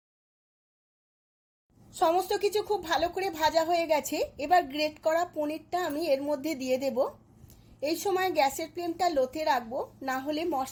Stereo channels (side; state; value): both; identical; correlation 1.00